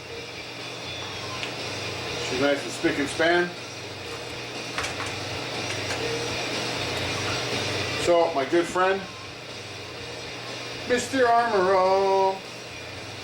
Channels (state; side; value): identical; both; correlation 1.00